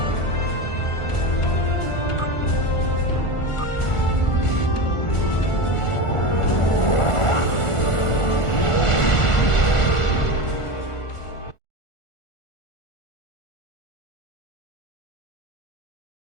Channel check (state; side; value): late; right; 1.4 ms